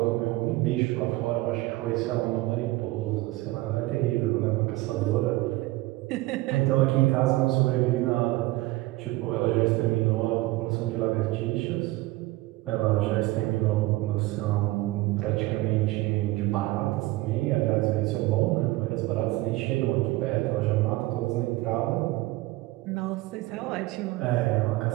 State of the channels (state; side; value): quieter; left; 19.2 dB